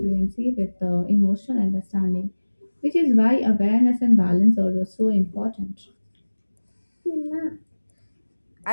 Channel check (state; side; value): inverted; both; correlation -1.00